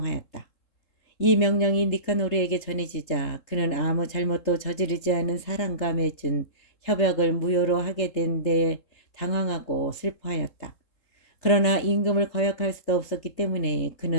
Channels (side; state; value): right; late; 3.7 ms